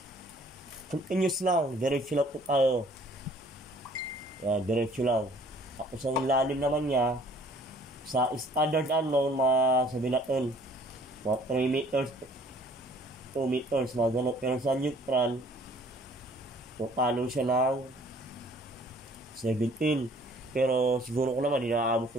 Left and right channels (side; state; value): both; normal; correlation 0.56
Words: continuous lang, diretso lang po tayo. Yan, diretso lang. Ako sa lalim naman niya, sa standard unknown, sabihin natin, mga 3 meters, 2 meters, mga ganun. Pero sa neutral, pupalo siya ng 17. Pero siguro ko naman, hindi nakaabot